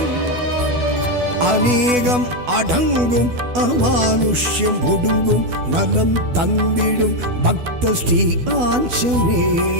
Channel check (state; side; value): late; left; 12 ms